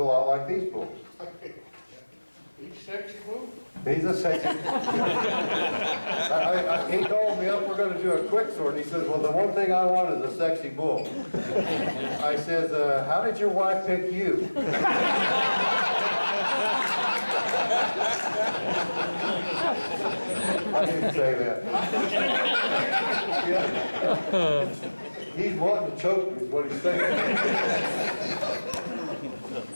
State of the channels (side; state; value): both; inverted; correlation -1.00